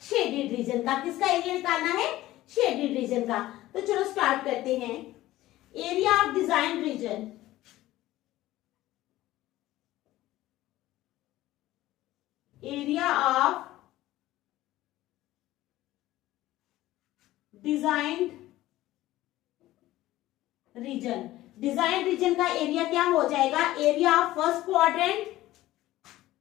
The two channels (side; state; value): right; quieter; 15.9 dB